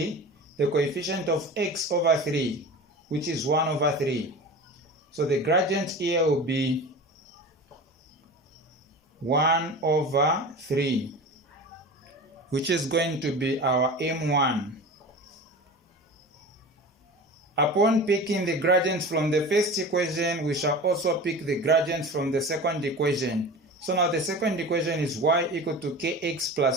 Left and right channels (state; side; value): normal; both; correlation 0.33